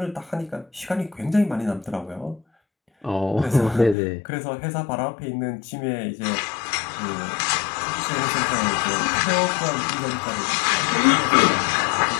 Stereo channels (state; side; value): drops out; right; at 4.0 s